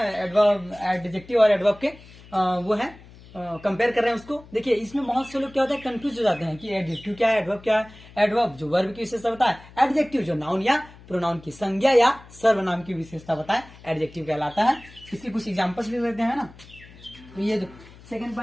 एडवर्ब, एडजेक्टिव और एडवर्ब के वो है, कंपेयर कर रहे हैं उसको। देखिए इसमें बहुत से लोग क्या होता है, कंफ्यूज हो जाते हैं कि एडजेक्टिव क्या है, एडवर्ब क्या है। एडवर्ब जो वर्ब की विशेषता बताए, एडजेक्टिव जो नाउन या प्रोनाउन की संज्ञा या सर्वनाम की विशेषता बताए, एडजेक्टिव कहलाता है। इसके कुछ एग्जांपल्स लिख लेते हैं ना। तो ये सेकंड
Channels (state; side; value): noise; left; hum, 21 dB below the sound